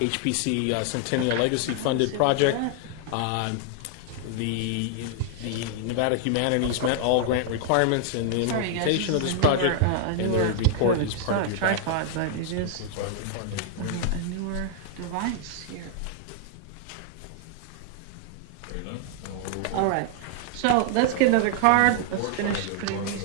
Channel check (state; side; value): different; both; correlation 0.00